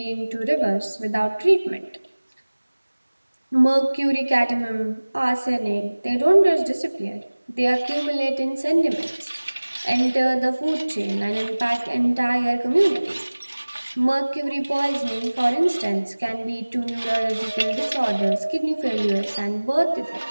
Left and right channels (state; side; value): inverted; both; correlation -1.00